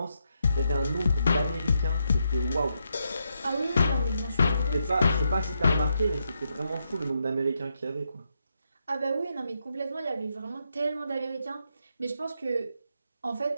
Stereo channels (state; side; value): inverted; both; correlation -0.81